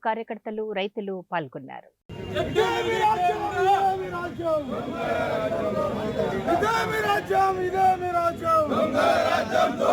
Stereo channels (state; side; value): identical; both; correlation 1.00